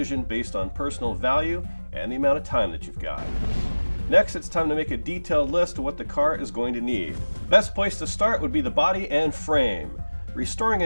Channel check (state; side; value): inverted; both; correlation -1.00